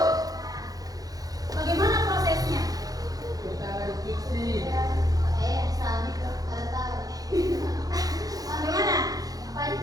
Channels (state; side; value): late; left; 0.18 ms